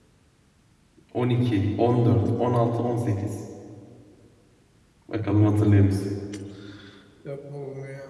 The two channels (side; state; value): both; identical; correlation 1.00